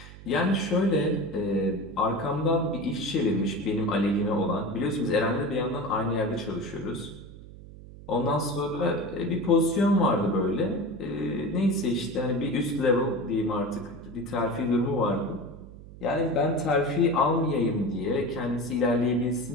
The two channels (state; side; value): noise; right; hum, 17 dB below the sound